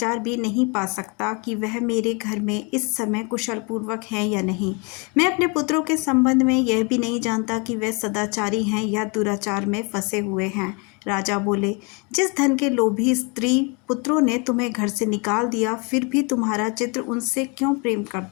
भी नहीं पा सकता कि वह मेरे घर में इस समय कुशल पूर्वक हैं या नहीं। मैं अपने पुत्रों के संबंध में यह भी नहीं जानता कि वे सदाचारी हैं या दुराचार में फंसे हुए हैं। राजा बोले, जिस धन के लोभी स्त्री पुत्रों ने तुम्हें घर से निकाल दिया, फिर भी तुम्हारा चित्र उनसे क्यों प्रेम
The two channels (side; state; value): right; quieter; 32.0 dB